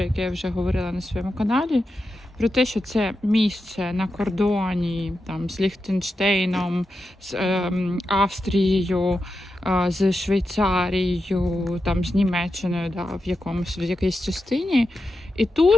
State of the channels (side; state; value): both; normal; correlation 0.89